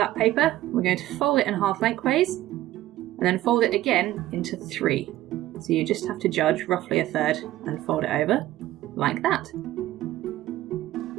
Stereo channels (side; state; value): left; quieter; 15.1 dB